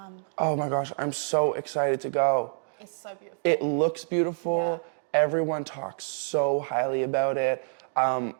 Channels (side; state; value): left; silent; digital silence